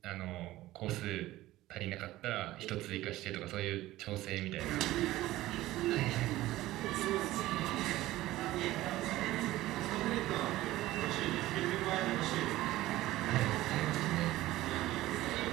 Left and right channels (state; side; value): quieter; left; 16.4 dB